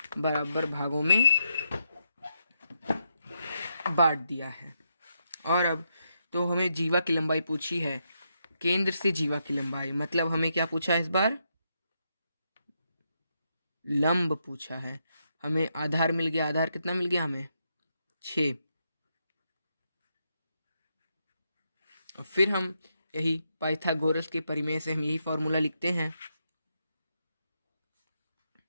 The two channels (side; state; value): both; inverted; correlation -0.81